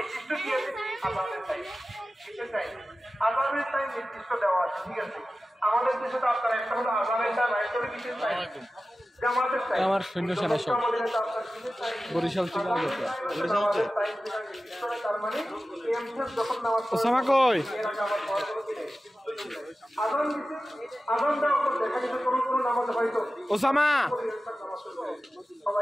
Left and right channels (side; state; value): both; normal; correlation 0.95